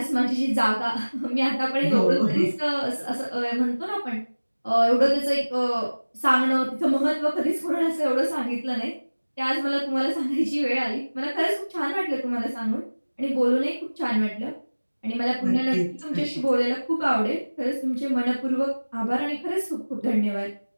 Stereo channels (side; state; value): both; inverted; correlation -1.00